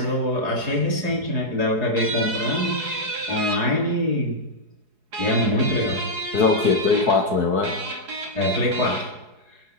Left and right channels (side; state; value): left; late; 4.7 ms